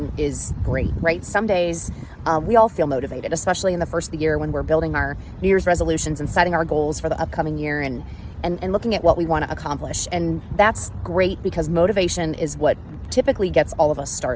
is great, right? Some days we all feel motivated, especially in the first of the year when we're building our New Year's resolutions and setting our goals for the upcoming year and looking at what we want to accomplish. And that's great because motivation is what typically gets all of us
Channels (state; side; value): identical; both; correlation 1.00